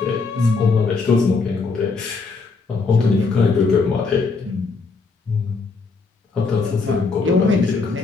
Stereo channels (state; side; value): quieter; right; 4.3 dB